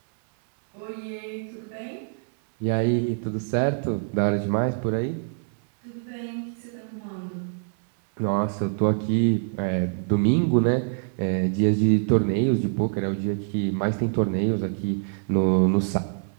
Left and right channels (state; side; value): silent; left; 62 dB below the other